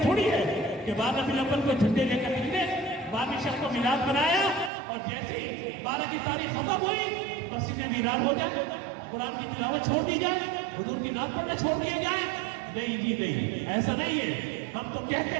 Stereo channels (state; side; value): drops out; left; at 4.7 s